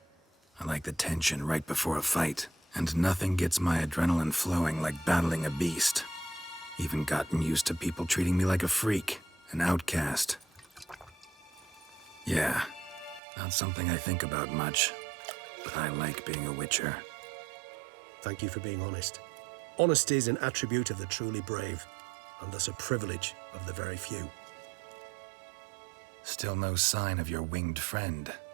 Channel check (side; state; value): left; drops out; at 13.2 s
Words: I like the tension right before a fight. And nothing gets my adrenaline flowing like battling a beast. Even gotten used to people treating me like a freak, an outcast. Yeah, not something I think about much, but I like being a witcher. Thank you for being honest. Honesty is an attribute of the truly brave, and thus a privilege of the very few. Still no sign of your winged friend.